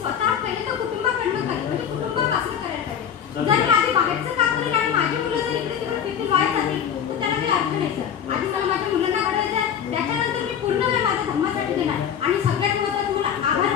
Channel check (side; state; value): right; quieter; 8.5 dB